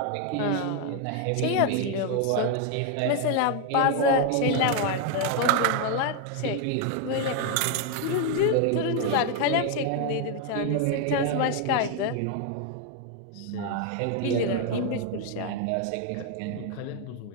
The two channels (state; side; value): different; both; correlation 0.01